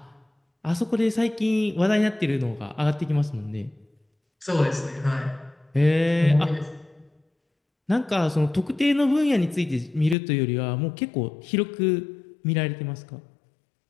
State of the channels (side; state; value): right; drops out; at 10.2 s